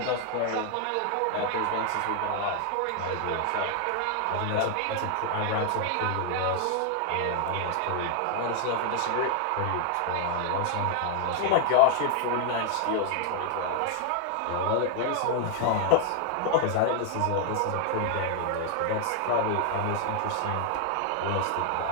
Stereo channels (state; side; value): different; both; correlation 0.00